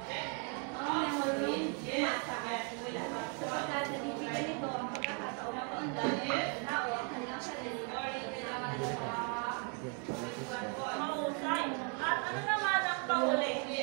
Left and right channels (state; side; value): quieter; left; 35.9 dB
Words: ang memorong masa at simula. Sapagkat nabibigyan nito ang pagkakataon na paundan ng tao ang kanilang sarili Mahusay. At ano naman ang panguli?